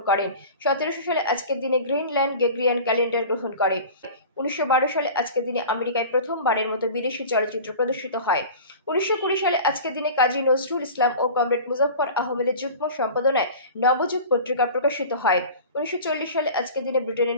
করেন। 1700 সালে আজকের দিনে গ্রিনল্যান্ড গ্রেগরিয়ান ক্যালেন্ডার গ্রহণ করে। 1912 সালে আজকের দিনে আমেরিকায় প্রথমবারের মতো বিদেশি চলচ্চিত্র প্রদর্শিত হয়। 1920 সালে আজকের দিনে কাজী নজরুল ইসলাম ও কমরেড মুজফ্ফর আহমেদের যুগ্ম সম্পাদনায় নবযুগ পত্রিকা প্রকাশিত হয়। 1940 সালে আজকের দিনে ব্রিটেনের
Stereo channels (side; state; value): both; inverted; correlation -0.38